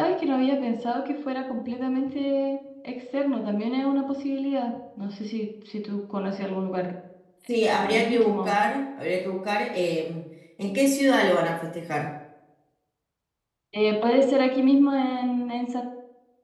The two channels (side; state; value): both; identical; correlation 1.00